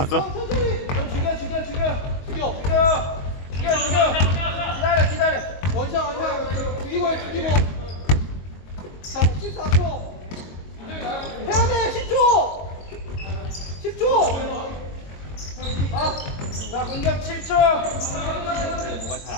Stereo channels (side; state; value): right; late; 22 ms